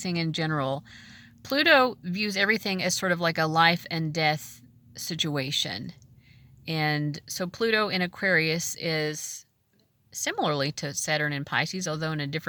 in general. Pluto views everything as sort of like a life and death situation. And so Pluto in Aquarius is similarly to Saturn in Pisces, although in a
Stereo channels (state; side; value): identical; both; correlation 1.00